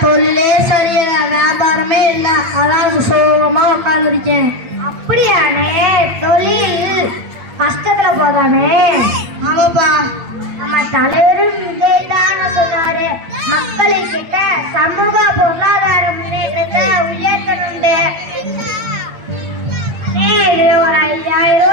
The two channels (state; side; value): late; left; 8.6 ms